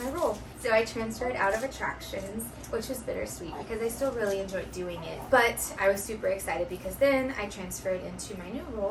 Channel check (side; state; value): both; identical; correlation 1.00